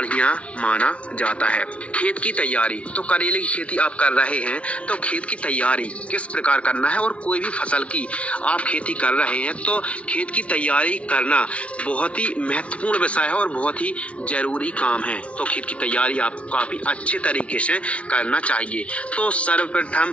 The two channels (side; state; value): right; late; 0.062 ms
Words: माना जाता है। खेत की तैयारी, तो करेले की खेती आप कर रहे हैं तो खेत की तैयारी किस प्रकार करना है, और कोई भी फसल की आप खेती कर रहे हैं तो खेत की तैयारी करना बहुत ही महत्वपूर्ण विषय है और बहुत ही जरूरी काम है। तो खेत की तैयारी आपको काफ़ी अच्छे तरीके से करना चाहिए। तो